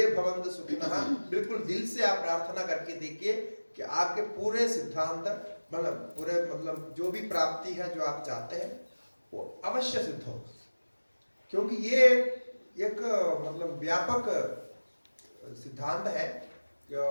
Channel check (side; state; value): both; inverted; correlation -1.00